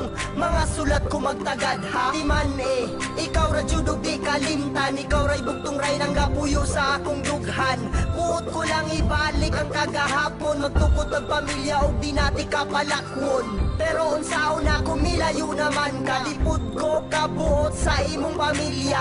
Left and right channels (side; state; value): both; identical; correlation 1.00